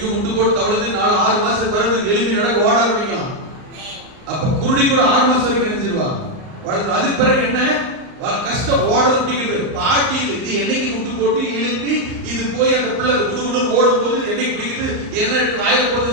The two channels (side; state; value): left; late; 39 ms